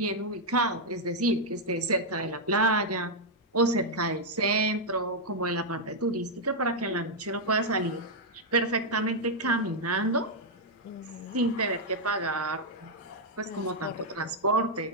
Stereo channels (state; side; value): normal; both; correlation -0.03